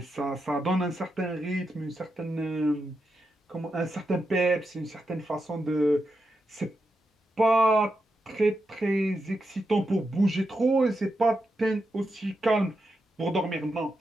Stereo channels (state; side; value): normal; both; correlation 0.86